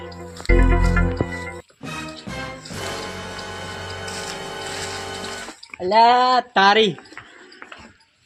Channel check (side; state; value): both; identical; correlation 1.00